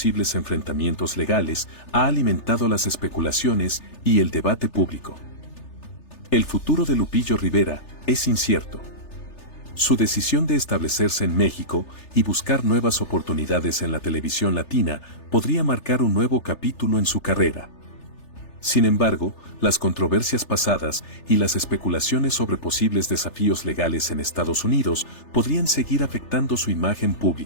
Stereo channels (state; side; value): late; right; 3.4 ms